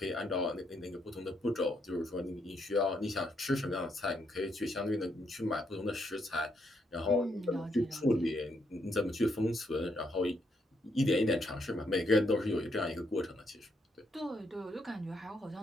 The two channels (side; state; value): both; normal; correlation 0.76